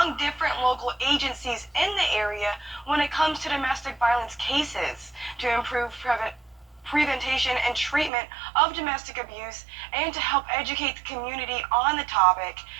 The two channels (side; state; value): left; drops out; at 8.1 s